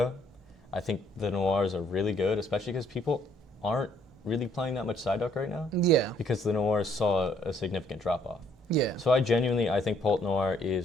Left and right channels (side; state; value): both; normal; correlation 0.66